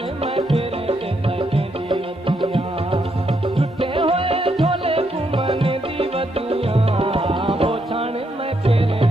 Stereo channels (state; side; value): normal; both; correlation 0.77